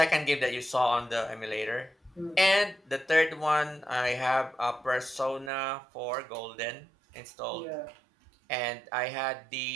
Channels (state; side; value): drops out; left; at 5.5 s